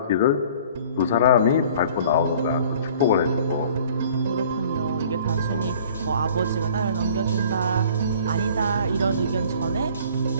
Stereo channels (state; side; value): inverted; both; correlation -0.50